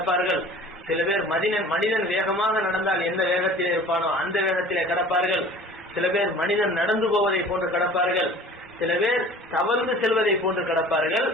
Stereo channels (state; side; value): normal; both; correlation 0.45